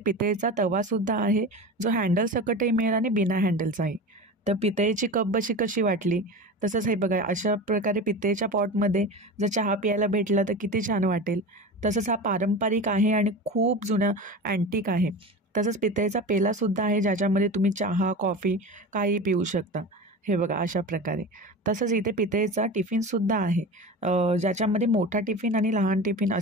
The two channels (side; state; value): both; normal; correlation 0.29